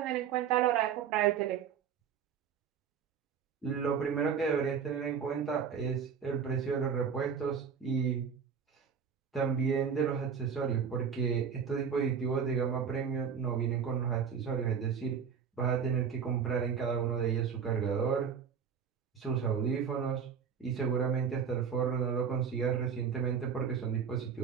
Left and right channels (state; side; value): quieter; left; 7.0 dB